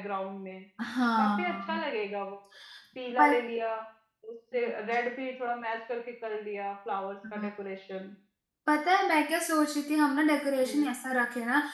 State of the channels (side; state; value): both; identical; correlation 1.00